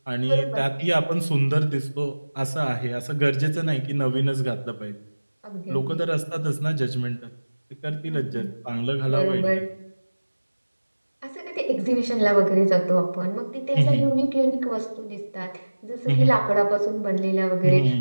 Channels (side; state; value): both; inverted; correlation -1.00